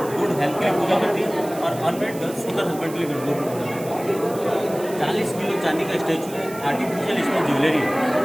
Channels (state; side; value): noise; right; hiss, 16 dB below the sound